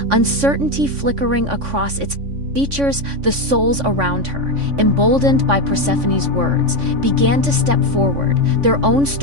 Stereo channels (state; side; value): late; left; 3.5 ms